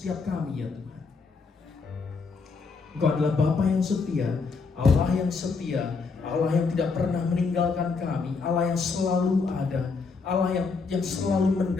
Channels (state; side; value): quieter; right; 4.6 dB